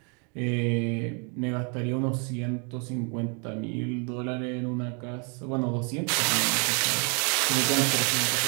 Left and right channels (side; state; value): left; quieter; 36.4 dB